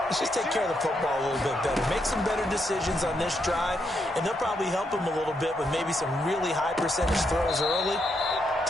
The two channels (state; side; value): normal; both; correlation 0.79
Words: let's just take care of the football a little bit better. Make some better decisions on this drive, and they'll probably help him a little bit with maybe some really high percentage throws early.